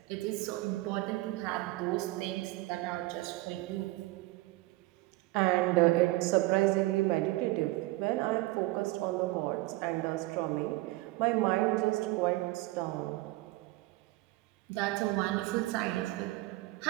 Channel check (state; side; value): quieter; left; 19.7 dB